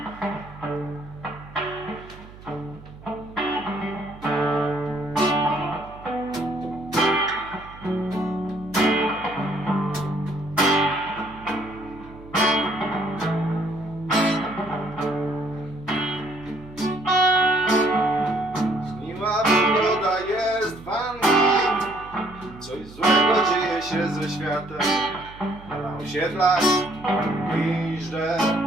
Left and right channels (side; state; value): right; noise; hum, 19 dB below the sound